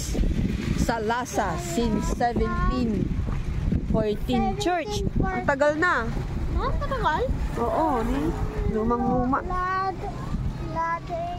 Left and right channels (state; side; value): identical; both; correlation 1.00